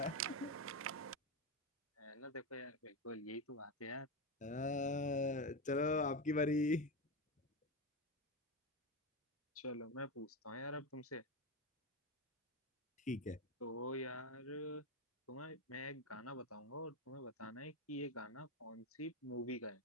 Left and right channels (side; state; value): both; normal; correlation 0.14